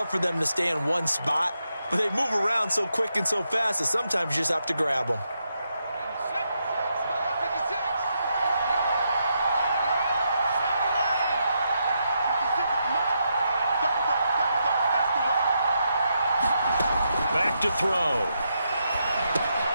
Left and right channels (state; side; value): inverted; both; correlation -0.82